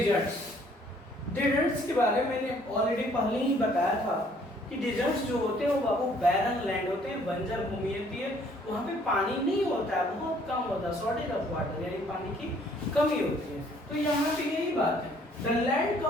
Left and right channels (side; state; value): both; normal; correlation 0.61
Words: डेजर्ट्स के बारे में मैंने ऑलरेडी पहले ही बताया था कि डेजर्ट्स जो होते हैं वो बाबू बैरन लैंड होते हैं, बंजर भूमि होती है, वहाँ पे पानी नहीं होता है, बहुत कम होता है, शॉर्टेज ऑफ वाटर, यानी पानी की कमी होती है। तो यहाँ पे यही बात है, the land